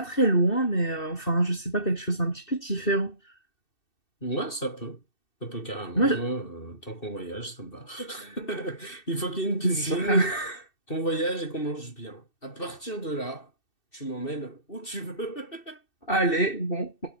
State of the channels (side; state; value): right; late; 2.6 ms